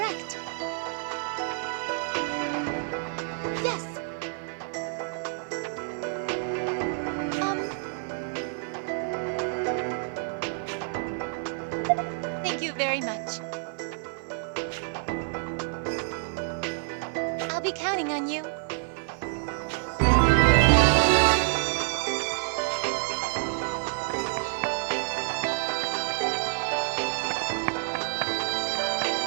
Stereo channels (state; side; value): silent; left; 59 dB below the other